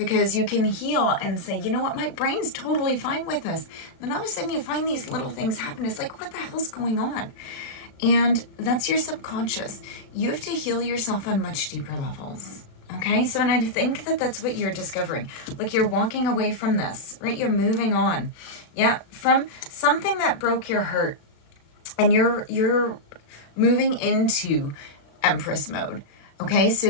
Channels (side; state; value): right; late; 36 ms